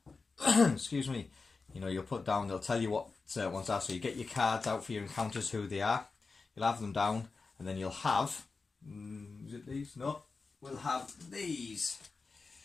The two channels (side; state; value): right; quieter; 4.3 dB